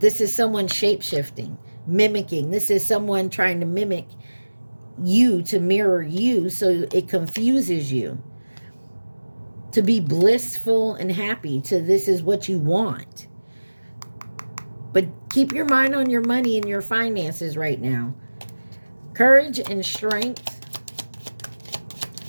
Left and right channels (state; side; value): inverted; both; correlation -1.00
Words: is someone shape-shifting, mimicking. This is someone trying to mimic you, to mirror you, so it confuses you. To be blissful and happy, to this is what you want. But keep your mind on your money and your finances right now. Courage and strength.